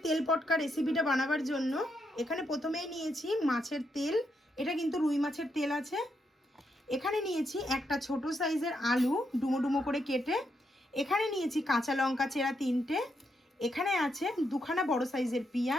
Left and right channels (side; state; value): both; normal; correlation 0.80